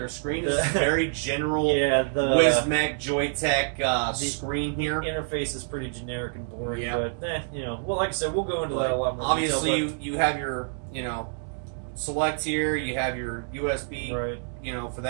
screen. This is very general Wismec Joytech screen here. The interface is pretty generic and boring, but well, like I said, we'll go into that a lot more. Obviously, you have your select here. You have your USB, for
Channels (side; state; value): left; silent; digital silence